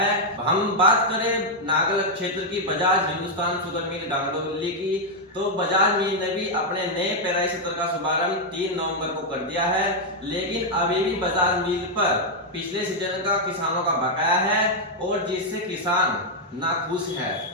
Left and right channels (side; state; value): both; normal; correlation -0.01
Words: हम बात करें नागल क्षेत्र की बजाज हिंदुस्तान शुगर मिल गांगडोली की, तो बजाज मिल ने भी अपने नए पेराई सत्र का शुभारंभ 3 नवंबर को कर दिया है, लेकिन अभी भी बजाज मिल पर पिछले सीजन का किसानों का बकाया है और जिससे किसान नाखुश है।